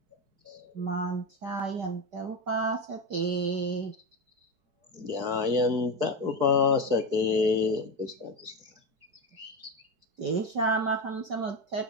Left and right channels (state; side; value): late; left; 4.6 ms